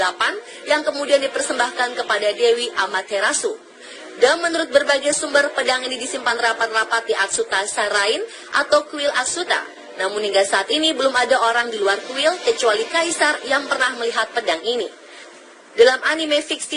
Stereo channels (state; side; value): identical; both; correlation 1.00